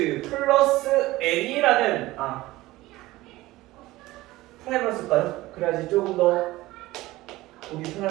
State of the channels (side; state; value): left; quieter; 18.2 dB